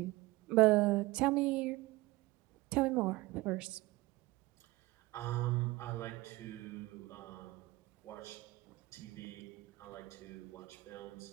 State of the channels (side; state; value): left; quieter; 19.9 dB